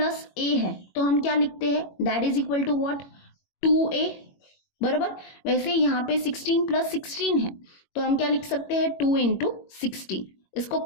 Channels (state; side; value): late; right; 21 ms